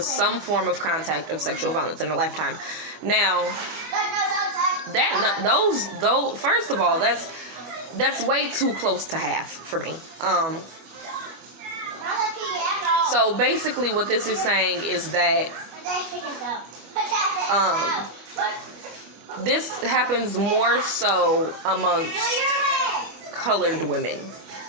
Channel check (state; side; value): late; left; 25 ms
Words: some form of contact of sexual violence in their lifetime. Now, first of all, that's way too close to half for me. So basically, what this is saying is that this happens more so amongst colored women.